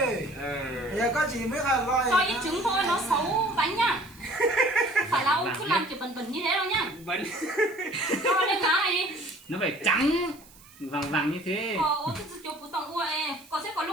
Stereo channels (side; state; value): right; noise; hiss, 24 dB below the sound